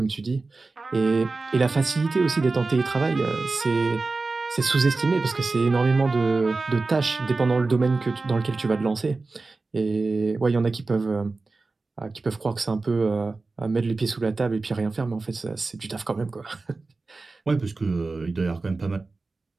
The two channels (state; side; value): quieter; left; 3.7 dB